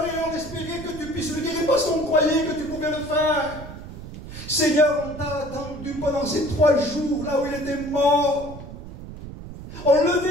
et on espérait que tu puisses le guérir parce qu'on croyait que tu pouvais le faire. Seigneur, on t'a attendu pendant ces 3 jours, là où il était mort. On le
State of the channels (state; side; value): noise; right; rumble, 12 dB below the sound